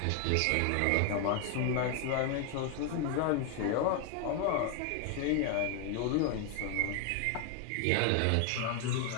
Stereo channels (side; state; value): both; different; correlation 0.01